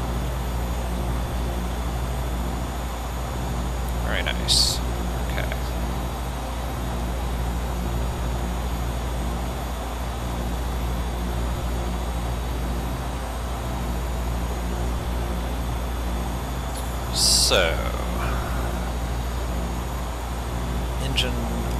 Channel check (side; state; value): both; identical; correlation 1.00